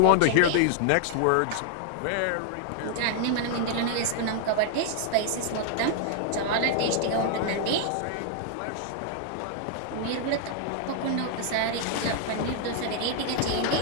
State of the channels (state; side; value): different; both; correlation 0.00